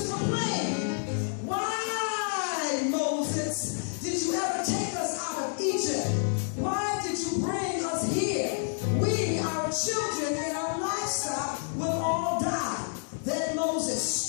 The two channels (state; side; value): silent; right; 57 dB below the other